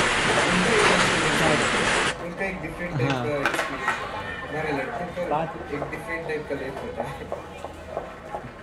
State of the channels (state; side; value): identical; both; correlation 1.00